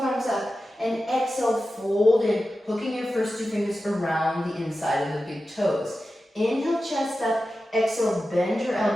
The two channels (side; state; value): both; normal; correlation 0.93